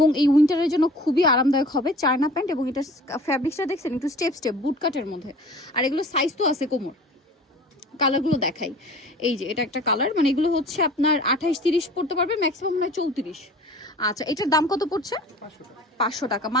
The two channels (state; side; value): normal; both; correlation 0.44